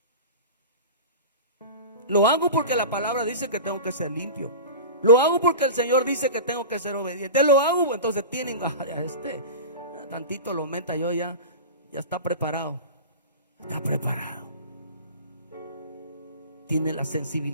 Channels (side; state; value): both; inverted; correlation -0.30